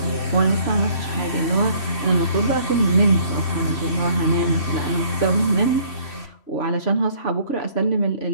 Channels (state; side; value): late; right; 3.1 ms